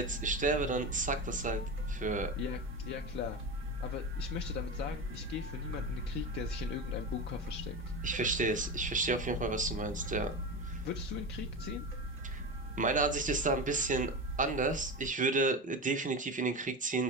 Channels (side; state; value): both; normal; correlation 0.23